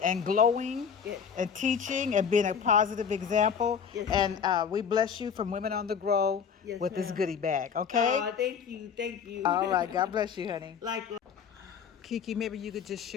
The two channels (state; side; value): quieter; right; 7.0 dB